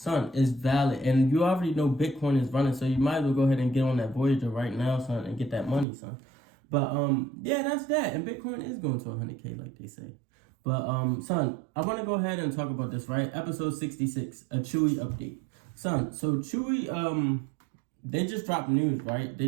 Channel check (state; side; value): drops out; left; at 5.9 s